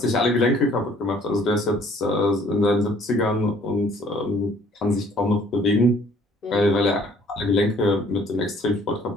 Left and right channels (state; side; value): normal; both; correlation 0.59